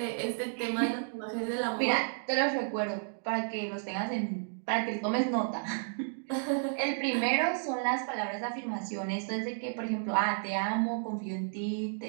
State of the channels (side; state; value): left; silent; digital silence